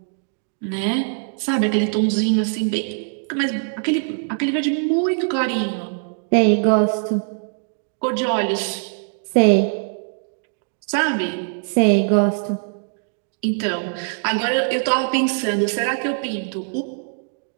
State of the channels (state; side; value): silent; left; digital silence